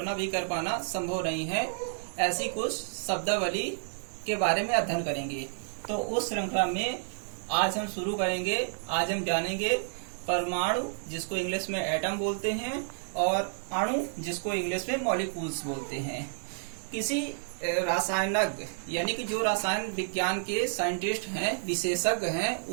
भी कर पाना संभव नहीं है, ऐसी कुछ शब्दावली के बारे में अध्ययन करेंगे। तो उस श्रृंखला में आज हम शुरू करेंगे। आज हम जानेंगे परमाणु, जिसको इंग्लिश में एटम बोलते हैं, और अणु, जिसको इंग्लिश में मॉलिक्यूल्स बोलते हैं। किसी रासायनज्ञ यानी कि जो रसायन विज्ञान के साइंटिस्ट हैं, विशेषज्ञ हैं,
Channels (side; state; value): left; silent; digital silence